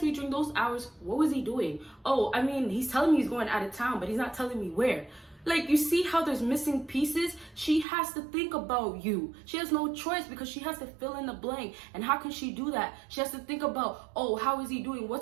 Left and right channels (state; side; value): drops out; left; at 7.9 s